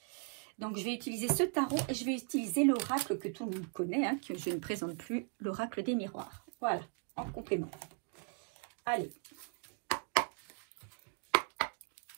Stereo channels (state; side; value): quieter; left; 39.7 dB